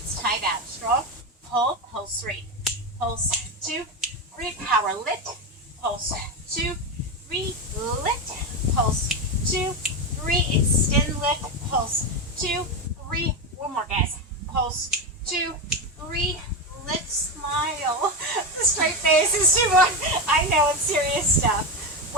tight out. Strong. Hold. Pulse 3. Pulse 2, 3. Power lift. Pulse 2, 3. Lift. Pulse 2, 3. Extend lift. Pulse 2, 3. One more, guys. Pulse 2, 3. Lift. Smile. The straight face is too much. I know it's serious stuff.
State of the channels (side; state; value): both; normal; correlation 0.15